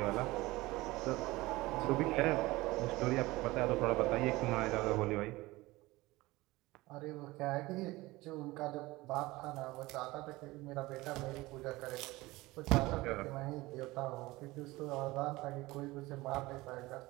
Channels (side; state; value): left; quieter; 20.1 dB